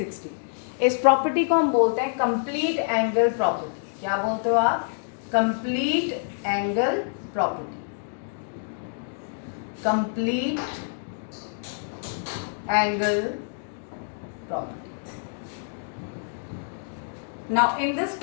इस प्रॉपर्टी को हम बोलते हैं कंप्लीट एंगल प्रॉपर्टी। क्या बोलते हो आप, complete angle property, complete angle property. Now in this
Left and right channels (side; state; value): right; silent; digital silence